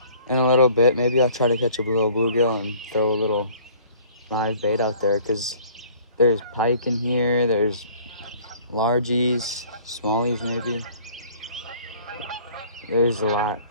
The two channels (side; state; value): both; inverted; correlation -0.53